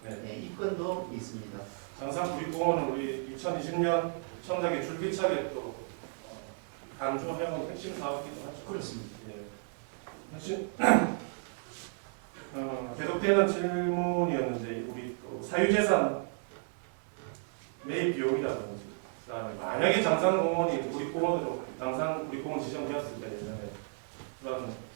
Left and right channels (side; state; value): left; silent; 56 dB below the other